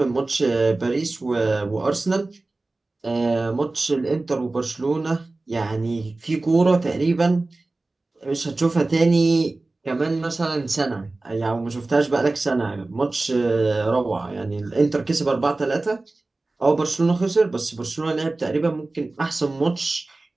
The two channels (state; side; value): quieter; left; 3.2 dB